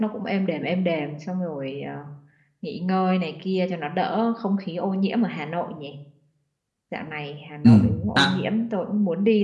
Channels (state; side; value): identical; both; correlation 1.00